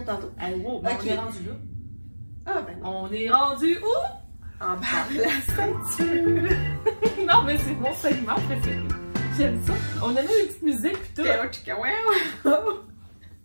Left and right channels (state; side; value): inverted; both; correlation -1.00